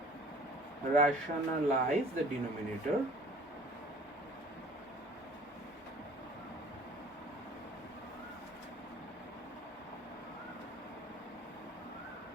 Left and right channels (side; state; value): both; normal; correlation 0.49